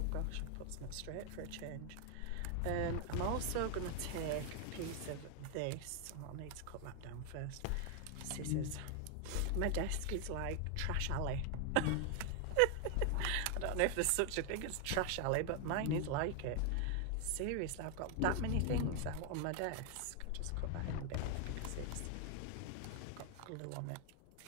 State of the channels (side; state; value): both; different; correlation 0.00